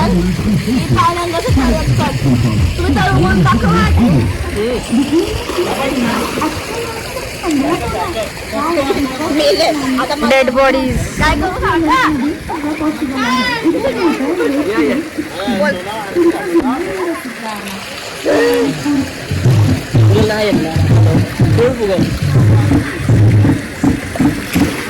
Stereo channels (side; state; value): both; identical; correlation 1.00